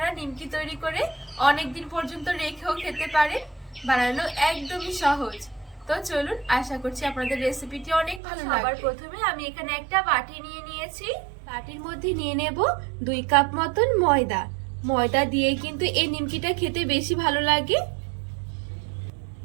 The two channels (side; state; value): left; drops out; at 8.2 s